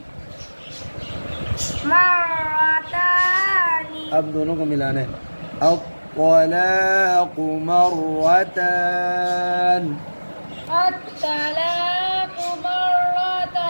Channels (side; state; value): both; inverted; correlation -1.00